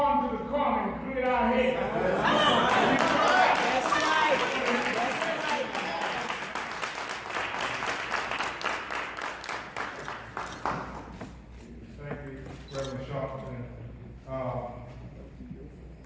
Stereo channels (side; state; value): both; identical; correlation 1.00